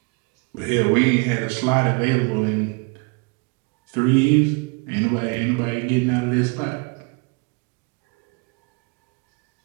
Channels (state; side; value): quieter; left; 30.0 dB